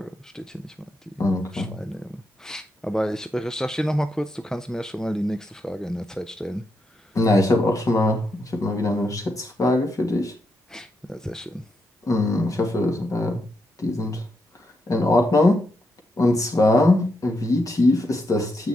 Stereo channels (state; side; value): normal; both; correlation 0.82